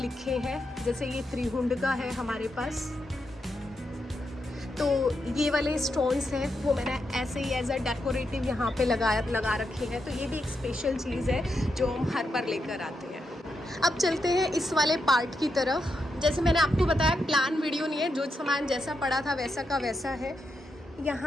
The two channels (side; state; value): both; normal; correlation 0.84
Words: हैं। जैसे ये त्रिहुंड का है हमारे पास, तो ये वाले स्टोन्स हैं वो मैंने ऐसे ही एज अ डेकोरेटिव यहाँ पे लगा रखे हैं। तो ये भी एक स्पेशल चीज़ है जो हम हर बार लेकर आते हैं। अब चलते हैं इस वाले पार्ट की तरफ। जैसे मैंने आपको बताया, प्लान वीडियो नहीं है, जो सामान जैसा पड़ा था वैसा का वैसा है।